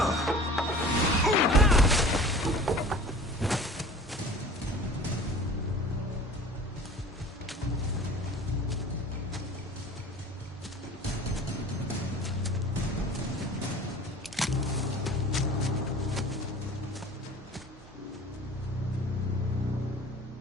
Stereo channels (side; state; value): both; normal; correlation 0.43